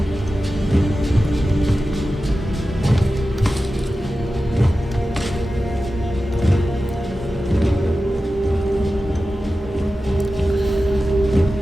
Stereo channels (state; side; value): normal; both; correlation 0.93